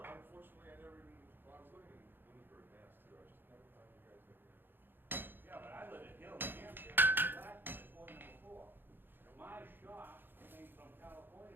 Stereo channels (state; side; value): late; left; 0.098 ms